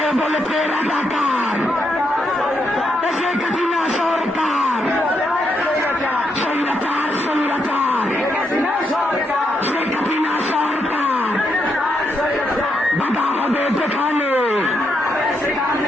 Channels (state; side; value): normal; both; correlation 0.80